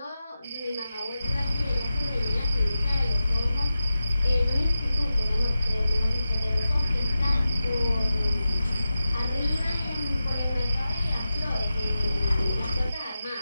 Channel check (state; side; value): inverted; both; correlation -0.94